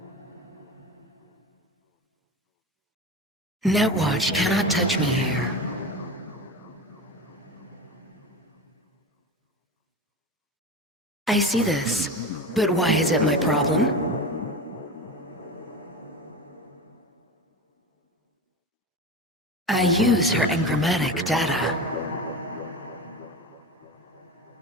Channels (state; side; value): normal; both; correlation 0.26